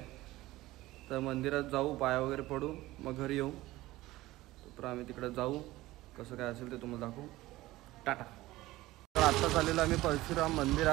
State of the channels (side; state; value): left; quieter; 17.7 dB